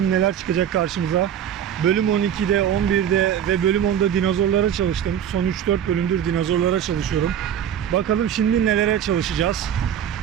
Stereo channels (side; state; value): left; quieter; 9.4 dB